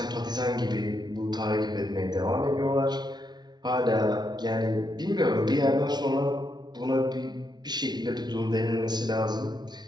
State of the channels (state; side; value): late; left; 0.20 ms